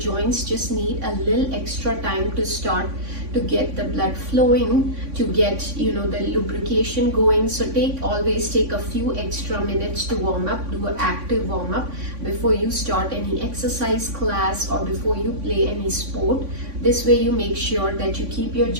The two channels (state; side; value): late; left; 3.5 ms